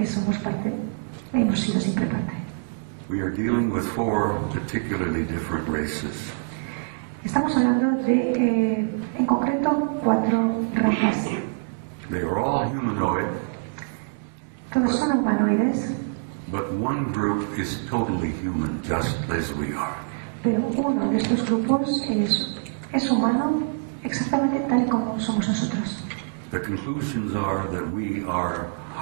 somos parte, hemos sido siempre parte. We are dealing with 4 particularly different races. Estamos hablando de, en concreto, 4 razas. They are all humanoid, Todos son humanoides, but one group is totally human, just as we are. pero uno de estos grupos es humano exactamente tal como somos nosotros. The conclusions are that we are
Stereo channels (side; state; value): left; silent; digital silence